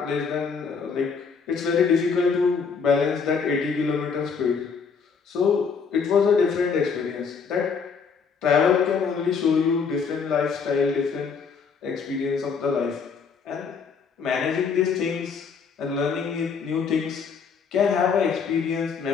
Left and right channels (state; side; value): quieter; right; 5.8 dB